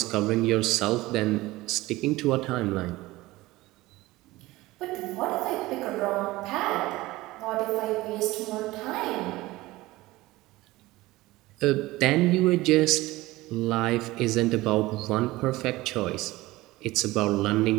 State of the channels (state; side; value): quieter; left; 19.0 dB